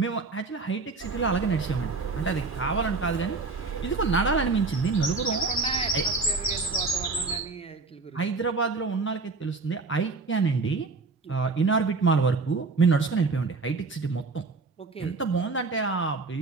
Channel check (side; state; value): left; quieter; 4.0 dB